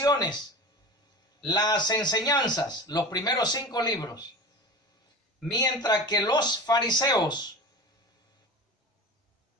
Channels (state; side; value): normal; both; correlation 0.32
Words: las enseñanzas, los primeros 5 libros. Mientras que los fariseos